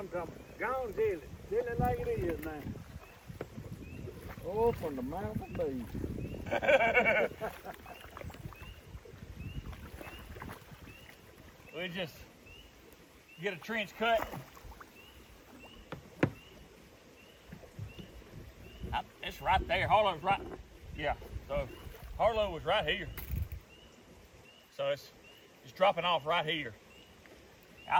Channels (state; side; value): identical; both; correlation 1.00